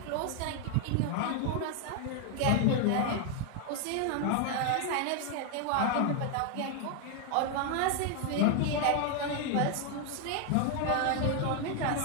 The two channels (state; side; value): different; both; correlation 0.00